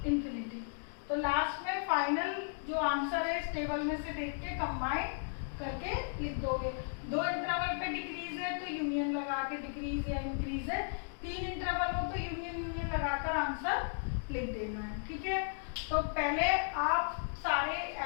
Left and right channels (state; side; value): silent; right; digital silence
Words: infinity. तो लास्ट में फाइनल जो आंसर है इस टेबल में से देख के कंबाइन करके लिख दोगे। 2 इंटरवल पे डिक्रीज है तो यूनियन लगा के डिक्रीज या इंक्रीज है, 3 इंटरवल हो तो यूनियन लगाकर आंसर लिख देना है, ठीक है। तो पहले आप सारे